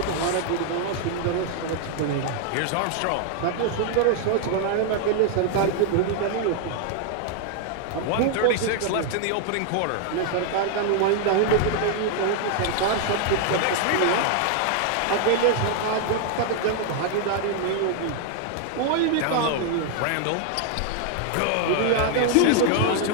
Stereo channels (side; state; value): both; different; correlation 0.00